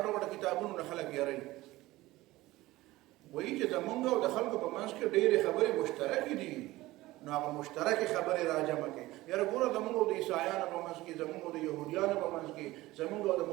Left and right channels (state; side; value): quieter; left; 18.2 dB